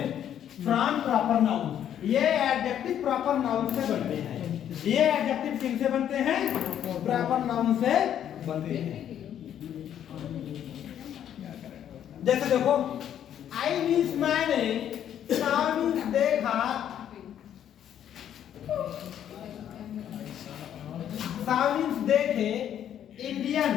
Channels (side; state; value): right; quieter; 10.1 dB